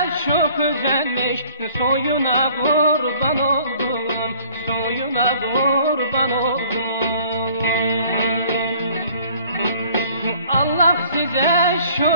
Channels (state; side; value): inverted; both; correlation -0.54